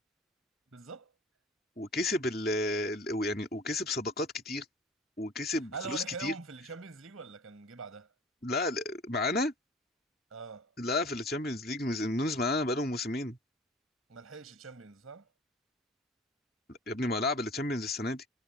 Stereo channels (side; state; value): both; normal; correlation 0.44